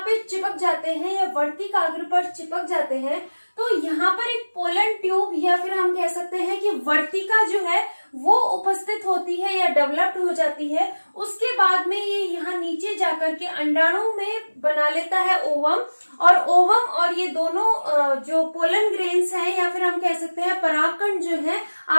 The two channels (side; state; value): both; inverted; correlation -1.00